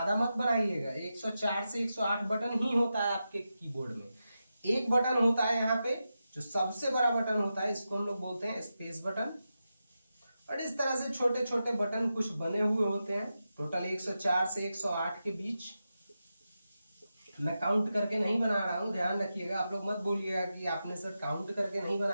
मत बनाइएगा। 104 से 108 बटन ही होता है आपके कीबोर्ड में। एक बटन होता है यहाँ पे जो सबसे बड़ा बटन होता है, इसको हम लोग बोलते हैं स्पेस बटन, और इस तरह से छोटे छोटे बटन कुछ बने हुए होते हैं, टोटल 104 से 108 के बीच। मैं काउंट करके नहीं बना रहा हूं, ध्यान रखिएगा, आप लोग मत बोलिएगा कि आपने सर काउंट करके नहीं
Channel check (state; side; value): inverted; both; correlation -0.90